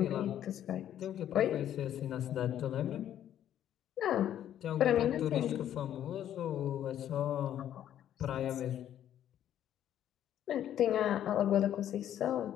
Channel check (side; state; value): right; quieter; 10.9 dB